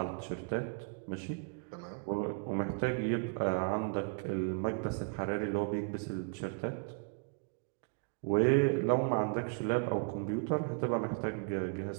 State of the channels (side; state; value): left; quieter; 36.3 dB